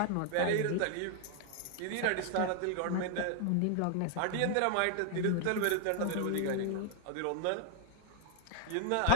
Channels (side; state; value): both; different; correlation 0.00